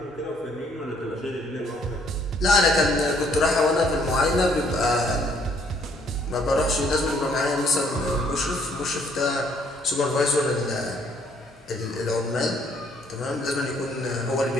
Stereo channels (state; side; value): normal; both; correlation 0.65